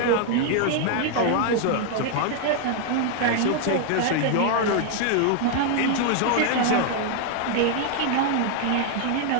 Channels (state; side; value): different; both; correlation 0.00